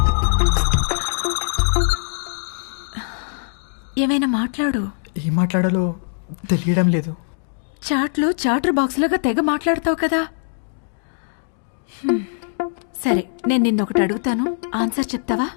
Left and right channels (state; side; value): silent; right; digital silence